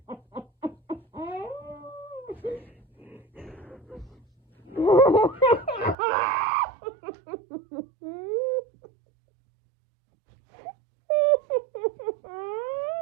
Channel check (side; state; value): left; drops out; at 6.0 s